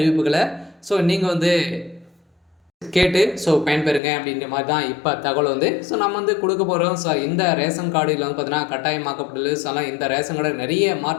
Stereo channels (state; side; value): drops out; right; at 4.0 s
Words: நீங்கள் கேட்டு பயன்பெறுங்க அப்படின்ற மாதிரி தான் இப்போ தகவல் நம்ம கொடுக்க போகிறோம். இந்த ரேஷன் கார்டில் பார்த்தீங்கன்னா கட்டாயமாக்கப்பட்டுள்ளது. இந்த ரேஷன் கார்டு நிறைய